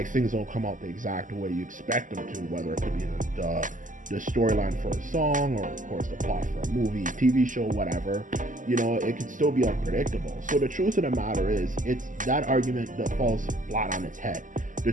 things don't come out the exact way you expect them to, whether it could be the storyline for a song, or of course the plot for a movie, TV show, whatever. It can still be unpredictable. So the truth of the matter is, it's that argument that falls flat on its head. The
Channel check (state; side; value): late; left; 0.38 ms